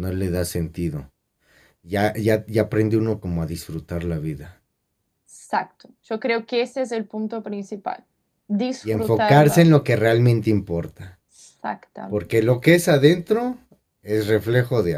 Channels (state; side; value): identical; both; correlation 1.00